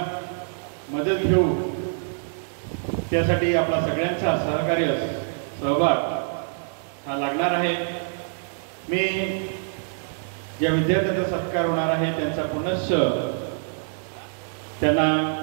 मदत घेऊ. त्यासाठी आपला सगळ्यांचा सहभाग हा लागणार आहे. मी ज्या विद्यार्थ्यांचा सत्कार होणार आहे त्यांचा पुनश्च त्यांना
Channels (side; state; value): left; silent; 62 dB below the other